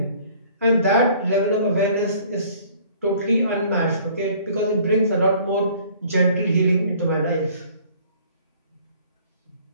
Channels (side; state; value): both; inverted; correlation -0.55